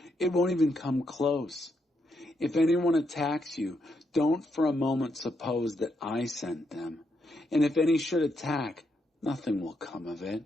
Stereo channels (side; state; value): both; normal; correlation 0.79